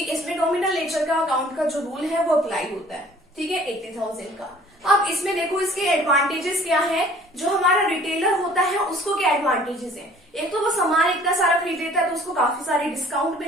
इसमें नॉमिनल नेचर का अकाउंट का जो रूल है वो अप्लाई होता है। ठीक है, 80,000 का। अब इसमें देखो इसके एडवांटेजेस क्या है, जो हमारा रिटेलर होता है उसको क्या एडवांटेजेस है। एक तो वो सामान इतना सारा खरीद लेता है तो उसको काफी सारी डिस्काउंट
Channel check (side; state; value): both; normal; correlation 0.52